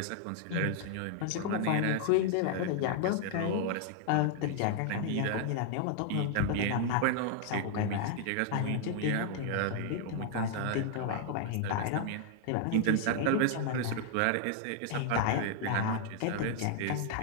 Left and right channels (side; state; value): both; different; correlation 0.00